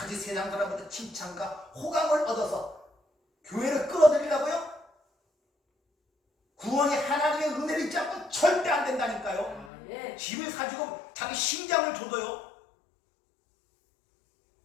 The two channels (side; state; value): right; drops out; at 9.7 s